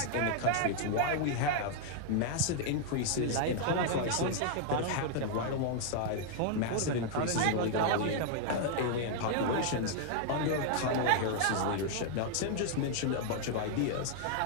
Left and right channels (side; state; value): both; different; correlation 0.00